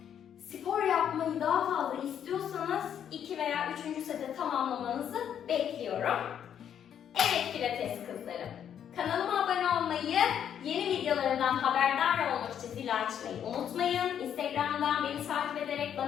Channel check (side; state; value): right; quieter; 9.1 dB